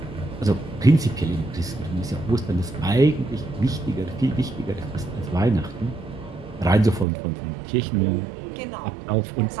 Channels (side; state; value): left; drops out; at 7.1 s